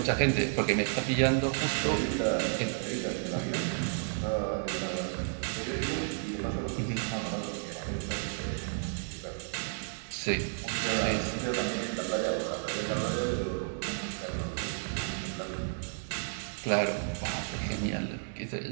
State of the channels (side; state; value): left; silent; 56 dB below the other